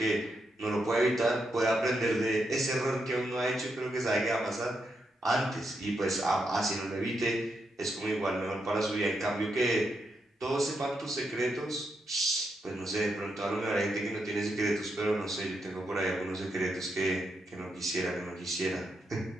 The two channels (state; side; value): normal; both; correlation 0.82